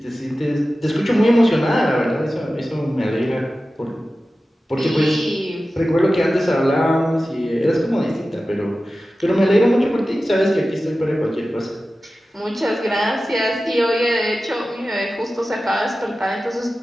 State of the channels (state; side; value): normal; both; correlation 0.95